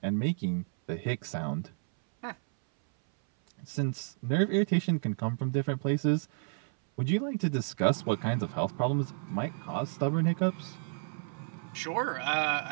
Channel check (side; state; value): left; silent; 57 dB below the other